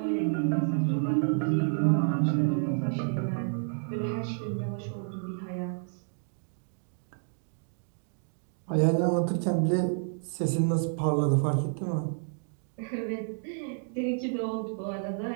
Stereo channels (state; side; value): silent; left; 58 dB below the other